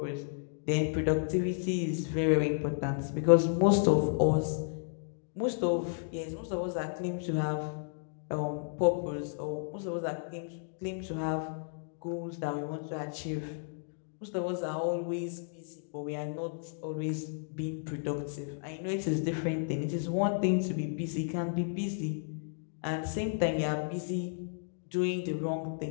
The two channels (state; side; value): silent; right; digital silence